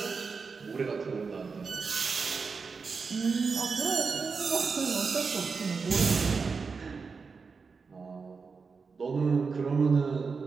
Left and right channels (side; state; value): left; quieter; 5.0 dB